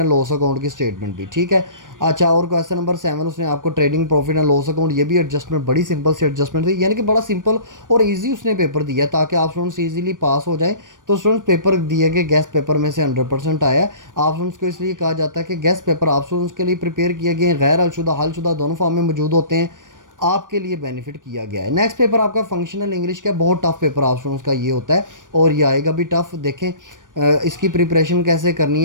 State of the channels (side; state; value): left; late; 0.88 ms